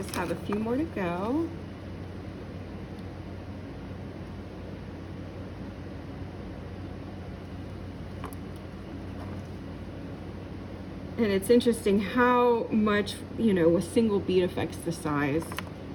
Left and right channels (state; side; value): identical; both; correlation 1.00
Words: have a few more to go. And it's interesting how much, you know, a single bead affects the size,